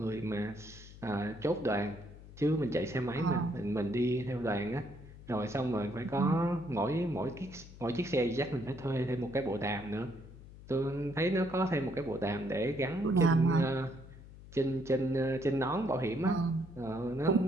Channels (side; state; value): left; noise; hum, 17 dB below the sound